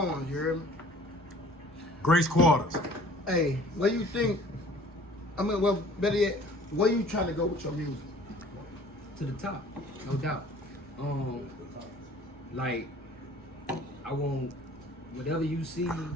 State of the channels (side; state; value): both; normal; correlation 0.51